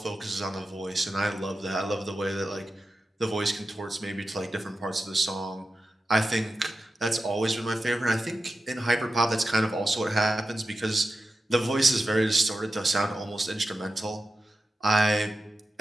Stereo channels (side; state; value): both; normal; correlation 0.92